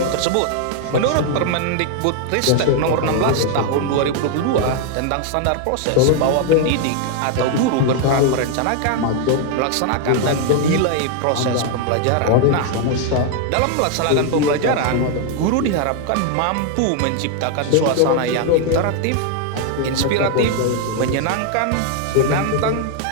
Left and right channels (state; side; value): different; both; correlation 0.00